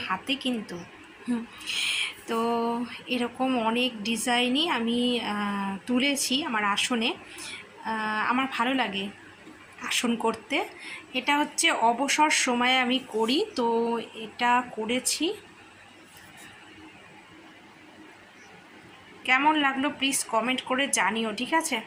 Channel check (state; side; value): identical; both; correlation 1.00